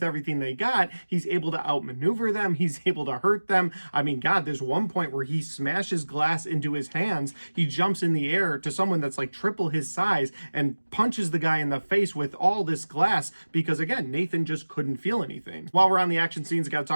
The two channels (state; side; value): inverted; both; correlation -1.00